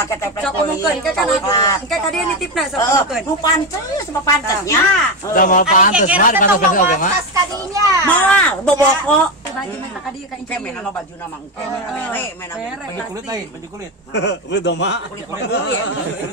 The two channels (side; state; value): both; normal; correlation 0.13